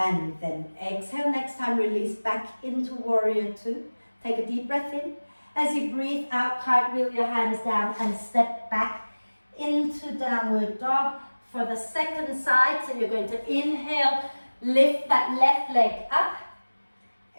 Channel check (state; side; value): inverted; both; correlation -1.00